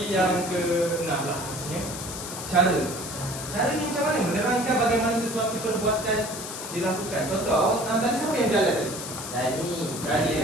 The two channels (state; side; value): noise; left; hiss, 8 dB below the sound